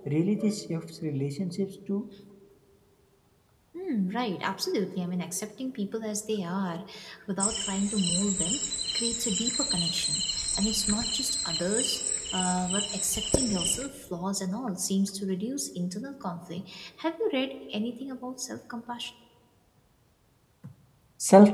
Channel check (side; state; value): both; identical; correlation 1.00